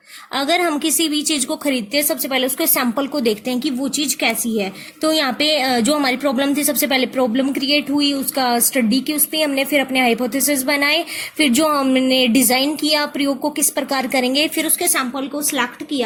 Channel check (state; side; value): identical; both; correlation 1.00